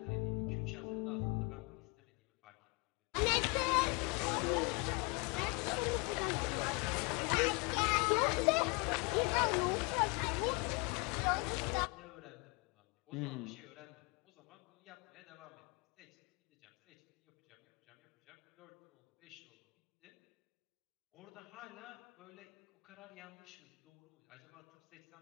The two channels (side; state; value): right; quieter; 30.5 dB